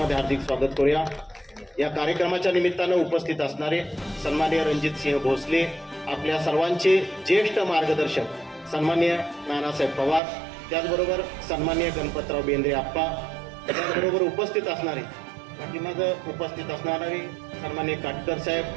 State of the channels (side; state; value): left; drops out; at 10.2 s